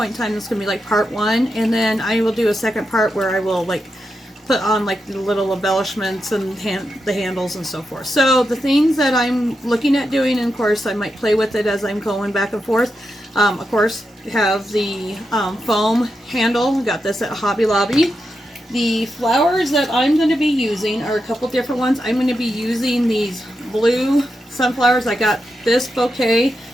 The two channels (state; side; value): normal; both; correlation 0.87